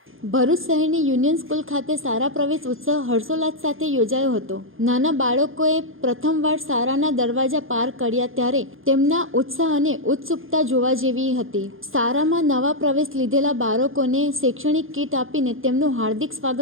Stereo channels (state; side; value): late; left; 0.59 ms